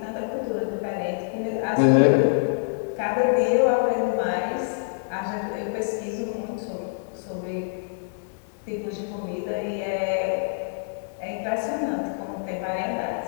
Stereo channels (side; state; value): right; silent; digital silence